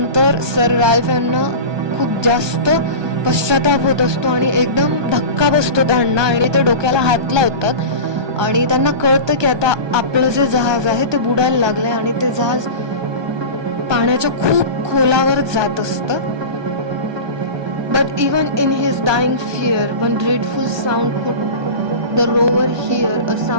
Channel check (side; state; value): left; late; 1.2 ms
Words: सर राल्फ यांना खूप जास्त पश्चाताप होत असतो आणि एकदम धक्का बसतो त्यांना आणि ते डोक्याला हात लावतात आणि त्यांना कळतं की आता आपलं जे जहाज आहे ते बुडायला लागलंय आणि ते जहाज पाण्याच्या खूप खोलावर जात असतं. But even in his dying fear, one dreadful sound could the rover hear, a